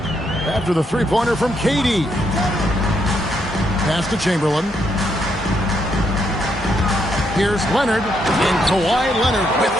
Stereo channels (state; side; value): normal; both; correlation 0.76